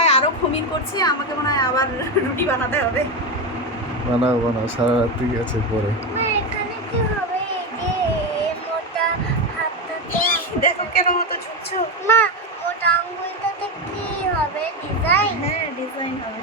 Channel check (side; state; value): both; normal; correlation 0.13